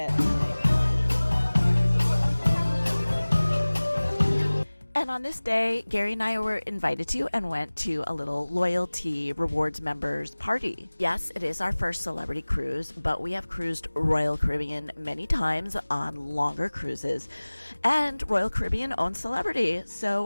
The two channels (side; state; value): both; inverted; correlation -1.00